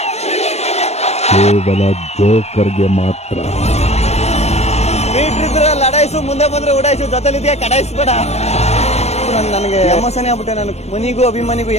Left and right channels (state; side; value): late; right; 0.31 ms